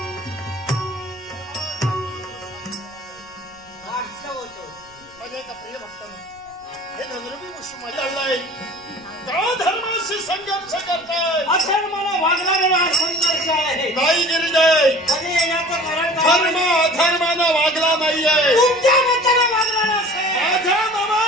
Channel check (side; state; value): right; noise; rumble, 29 dB below the sound